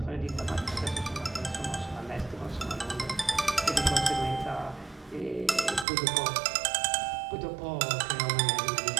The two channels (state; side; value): drops out; left; at 5.9 s